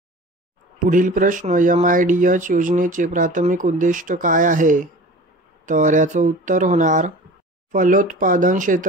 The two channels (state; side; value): normal; both; correlation 0.39